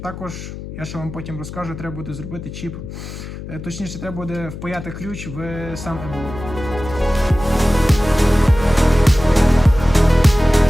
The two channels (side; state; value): left; noise; hum, 11 dB below the sound